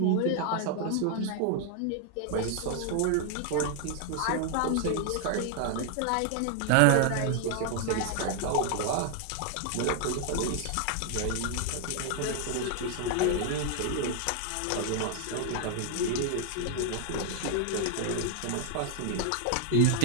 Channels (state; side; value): different; both; correlation 0.00